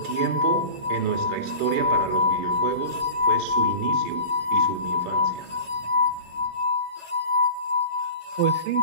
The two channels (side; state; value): left; late; 11 ms